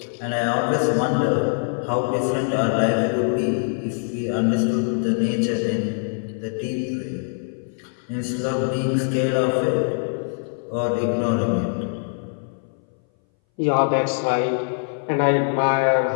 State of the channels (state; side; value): silent; right; 60 dB below the other